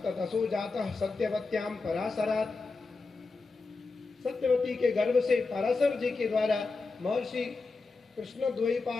जातः सत्यवत्याम पराशरात्, सत्यवती के गर्भ से पराशर जी के द्वारा महर्षि कृष्ण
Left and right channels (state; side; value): quieter; right; 4.0 dB